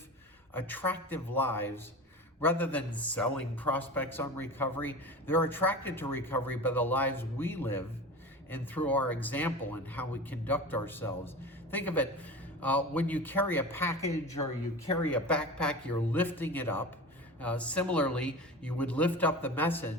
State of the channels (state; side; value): normal; both; correlation 0.32